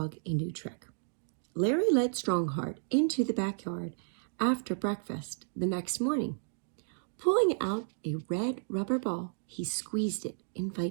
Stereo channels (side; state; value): left; silent; digital silence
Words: a new trick. Larry led Strongheart into the backyard after breakfast the next morning. Pulling out a red rubber ball, he squeezed it